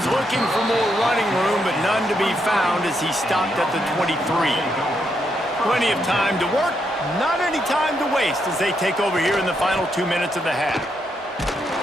looking for more running room, but none to be found as he stopped at the 23. Plenty of time to work, not any time to waste as they take over here in the final 2 minutes of the half.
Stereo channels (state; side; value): normal; both; correlation 0.79